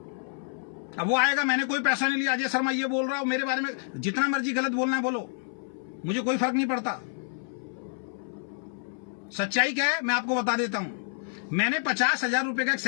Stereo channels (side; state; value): right; silent; 59 dB below the other